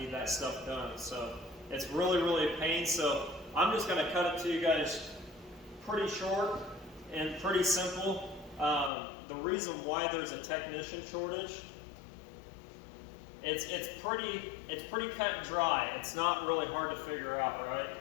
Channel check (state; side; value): drops out; right; at 8.9 s